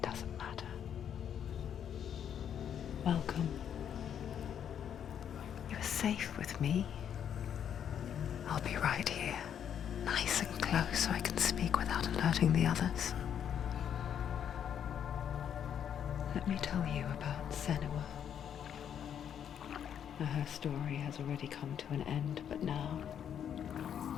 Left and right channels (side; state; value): right; quieter; 8.9 dB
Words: matter. Welcome. You're safe with me. I'll be right here, nice and close so I can speak without alerting the others. Let me tell you about Senua. Her story has already come to an end, but now